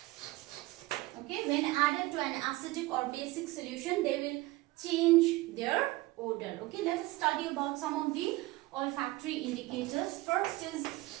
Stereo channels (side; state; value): left; quieter; 19.8 dB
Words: Okay, when added to an acidic or basic solution, they will change their odor. Okay, let us study about some of the olfactory indicators. First